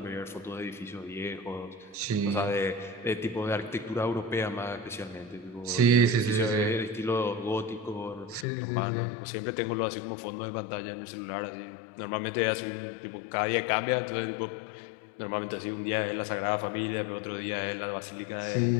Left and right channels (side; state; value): right; drops out; at 8.5 s